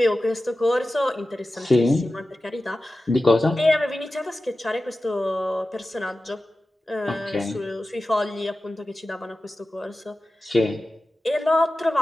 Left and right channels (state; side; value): normal; both; correlation 0.94